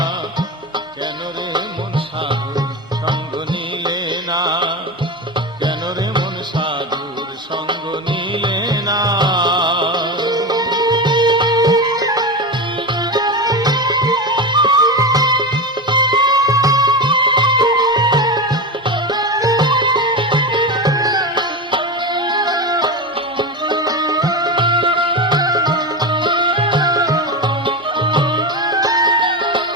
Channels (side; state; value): both; normal; correlation 0.20